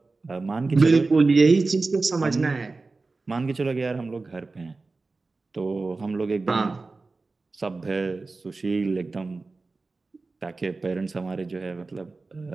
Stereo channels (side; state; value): left; quieter; 3.7 dB